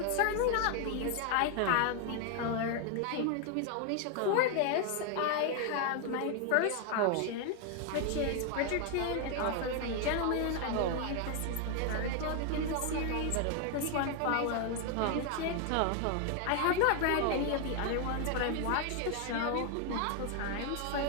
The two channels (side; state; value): both; different; correlation 0.01